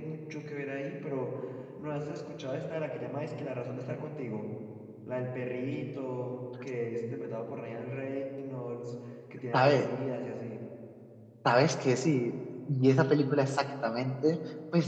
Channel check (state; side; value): identical; both; correlation 1.00